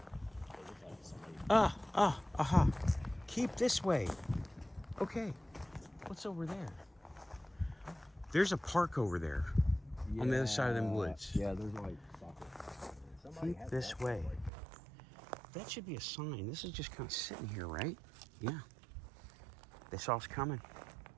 aha. Keep this way. Okay. What's over there? There's a park over there. On the other side of them woods. Yeah, there's like soccer. Keep this way. That should be a sign. This is just kind of sitting here, right? Yeah. They saw us coming.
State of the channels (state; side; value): drops out; left; at 14.5 s